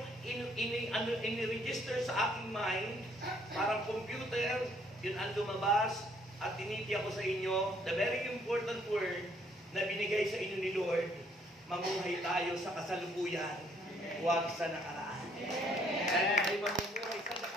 in-register sa aking mind, parang computer, yun ang lumabas, at tinitiya ko sa inyo, the very important word na binigay sa inyo ni Lord, mamuhay tayo sa kasalukuyan, huwag sa nakaraan. Dahil ay mamuhay sa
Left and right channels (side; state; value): both; normal; correlation 0.65